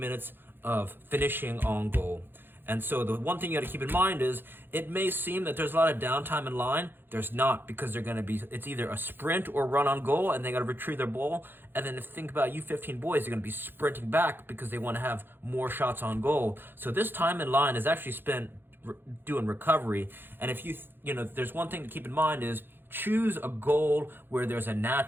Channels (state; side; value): late; left; 0.10 ms